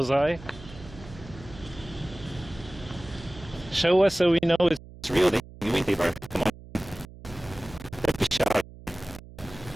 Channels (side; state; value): right; noise; hum, 18 dB below the sound